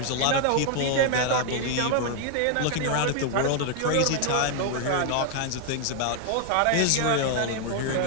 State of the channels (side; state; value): both; different; correlation 0.00